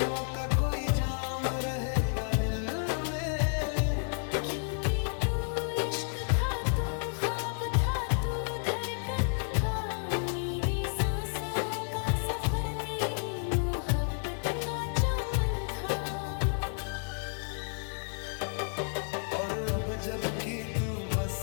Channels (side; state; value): right; silent; digital silence